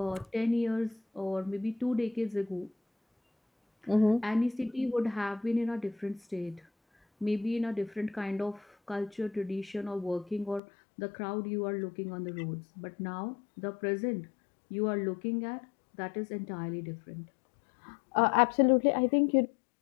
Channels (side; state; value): right; drops out; at 10.6 s